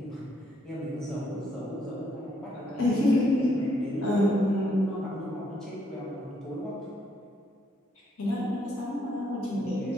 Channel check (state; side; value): normal; both; correlation 0.72